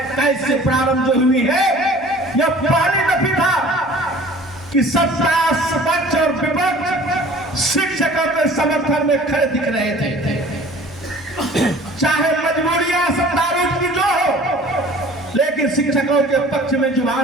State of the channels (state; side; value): normal; both; correlation 0.48